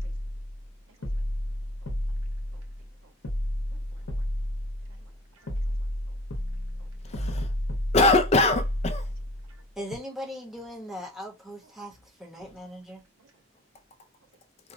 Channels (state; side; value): normal; both; correlation 0.43